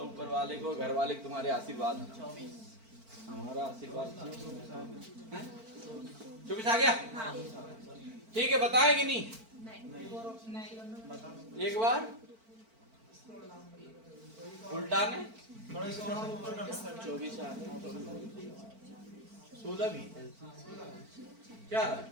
ऊपर वाले को, घर वाले तुम्हारे आशीर्वाद, हमारा आशीर्वाद। 24 आ गया, ठीक है, बताएगी नहीं एक बार उल्टा ने 24 16 भी क्या रहा?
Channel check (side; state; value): left; late; 4.5 ms